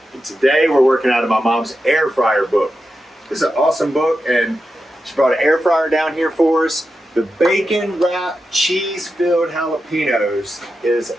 And today we're working out of my mom's air fryer book. This is an awesome book and she brought an air fryer down here for us. The bacon wrapped cheese filled jalapenos is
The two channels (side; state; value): both; normal; correlation 0.89